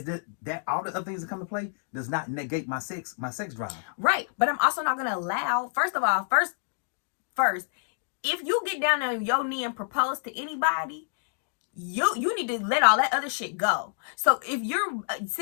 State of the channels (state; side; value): silent; right; digital silence